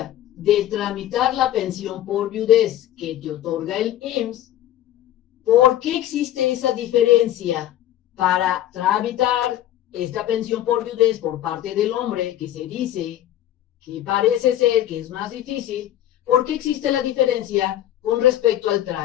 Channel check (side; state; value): right; quieter; 12.5 dB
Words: de tramitar la pensión por viudez que te otorga el IMSS, por qué existe esa diferencia para tramitar esta pensión por viudez por parte del hombre, que se dice que parece ser que es más difícil, por qué existe la diferencia con respecto al